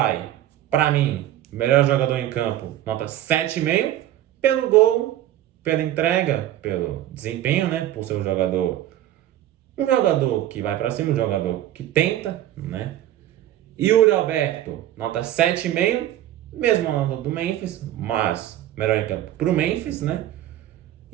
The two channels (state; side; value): quieter; left; 12.9 dB